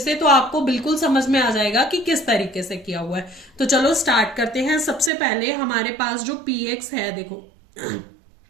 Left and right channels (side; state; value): left; drops out; at 5.1 s